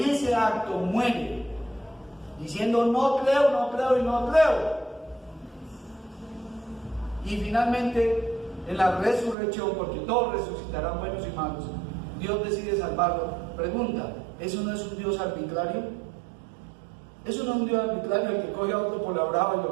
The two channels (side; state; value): left; drops out; at 9.3 s